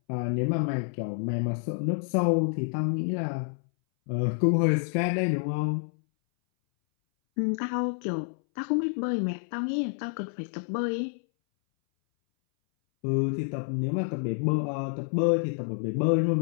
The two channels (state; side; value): silent; right; 59 dB below the other